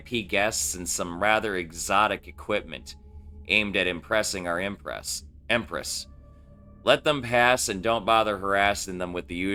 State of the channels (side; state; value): both; identical; correlation 1.00